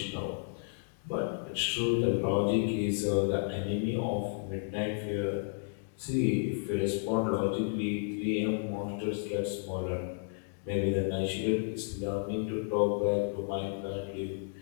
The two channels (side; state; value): right; silent; digital silence